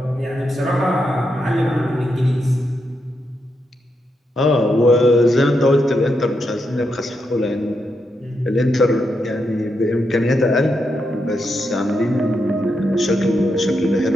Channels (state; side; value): normal; both; correlation 0.83